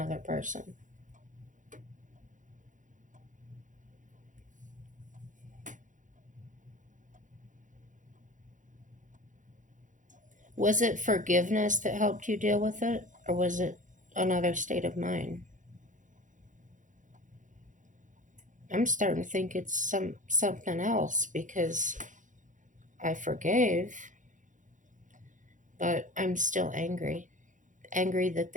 person. Was it forgiveness that helped you deal with it, or was it another state of mind? I'm starting to think it's something else because I forgave, but I'm still angry. Angry that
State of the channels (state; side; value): late; left; 0.37 ms